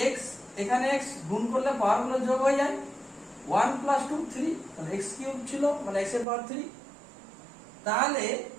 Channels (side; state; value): left; drops out; at 6.2 s